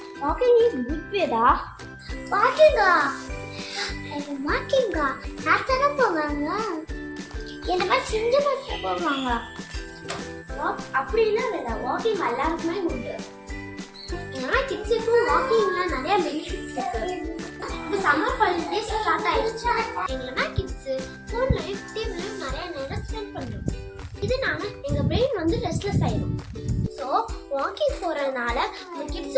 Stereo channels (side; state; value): both; identical; correlation 1.00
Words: வாக்கிங் இஸ் குட் வேடா. வாக்கிங்கா? வாக்கிங்கா யார்த்தானே போவாங்க? என்ன மாதிரி செஞ்சு பார்த்து போவாங்க. அப்படின்னா வேடா, வாக்கிங் எல்லாருக்குமே உண்டு. ஏன்னா கிட்ஸுக்கும் வாக்கிங்ல நிறைய பெனிஃபிட்ஸ் இருக்கு. இப்போ சம்மர் ஹாலிடேஸ் ஸ்டார்ட் ஆயிடுச்சு. எங்கன்னா கிட்ஸ் ஃபோன்லையும் டிவிலையும் நிறைய நேரம் ஸ்பெண்ட் பண்ணுறோம். இதனால எங்கள் பிரெயின் வந்து ரெஸ்ட்லெஸ் ஆயிடும். ஸோ வாக்கிங் போகிறதுனால இந்த